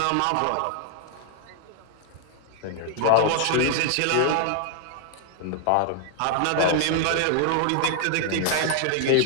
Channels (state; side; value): different; both; correlation 0.00